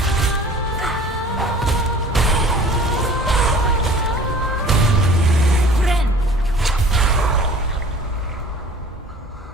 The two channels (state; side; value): normal; both; correlation 0.46